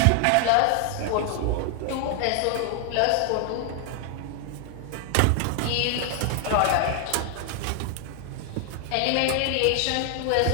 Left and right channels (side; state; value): both; different; correlation 0.00